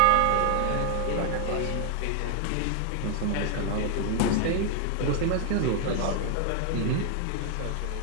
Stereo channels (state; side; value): different; both; correlation 0.00